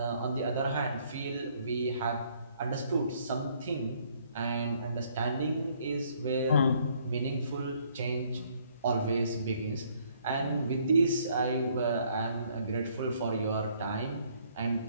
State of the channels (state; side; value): inverted; both; correlation -0.65